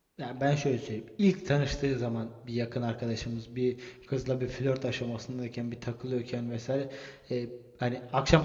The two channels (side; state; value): both; identical; correlation 1.00